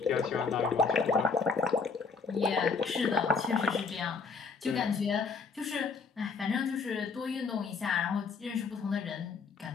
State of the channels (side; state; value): right; quieter; 4.9 dB